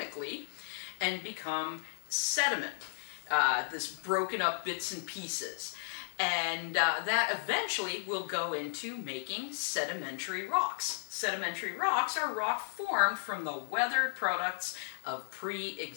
and become sediment, this broken up bits and pieces. And that eventually will go into making sedimentary rocks. Sedimentary rocks are rock formed from the weathered products of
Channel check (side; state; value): right; silent; 55 dB below the other